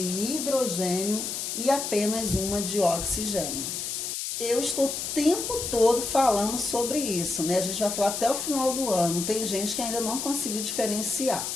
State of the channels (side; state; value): left; noise; hiss, 4 dB below the sound